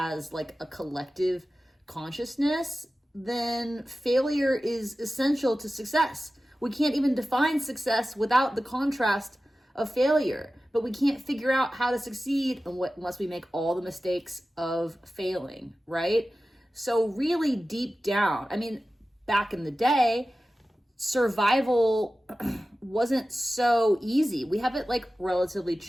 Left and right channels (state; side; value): normal; both; correlation 0.95